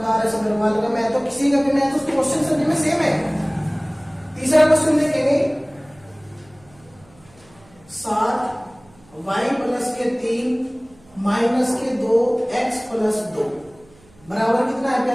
आर.एस. अग्रवाल का मैथ हो, किसी का भी मैथ, उस क्वेश्चन सभी में सेम है। तीसरा क्वेश्चन देखेंगे, 7y प्लस के 3 माइनस के 2x प्लस 2 बराबर कितना है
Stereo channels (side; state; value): right; noise; hum, 28 dB below the sound